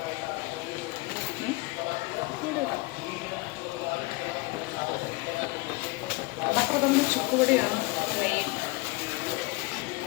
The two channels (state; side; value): quieter; right; 23.2 dB